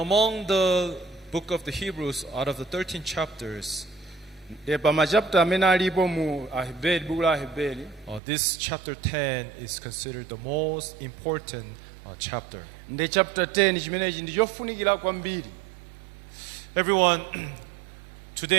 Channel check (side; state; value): left; drops out; at 8.2 s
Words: the book of the Hebrews, out of the 13 chapters, Pa machapter amene alipo mu Aheberi, buku la Aheberi, this chapter 10 is considered the most important chapter. ndi chapter 10 chimenechi ndi chofunikira kwambiri. Everyone,